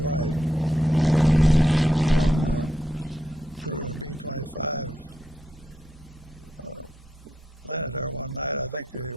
One crew in a B-25 landed there one night. I think they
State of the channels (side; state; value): both; normal; correlation 0.81